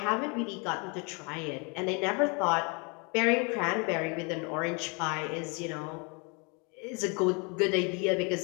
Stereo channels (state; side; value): quieter; right; 32.6 dB